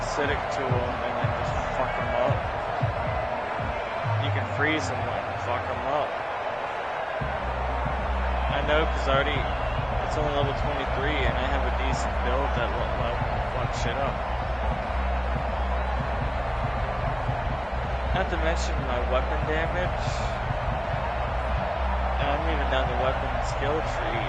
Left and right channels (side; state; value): both; identical; correlation 1.00